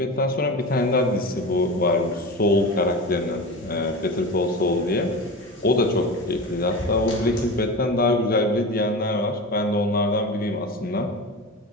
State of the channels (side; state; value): both; normal; correlation 0.28